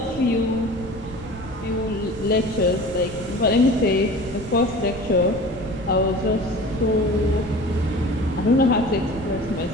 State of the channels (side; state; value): right; noise; rumble, 14 dB below the sound